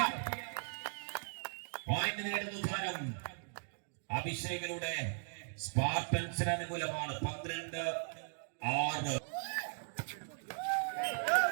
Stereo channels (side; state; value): left; silent; digital silence